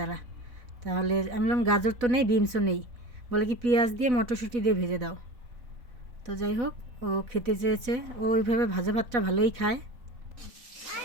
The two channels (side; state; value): left; late; 4.0 ms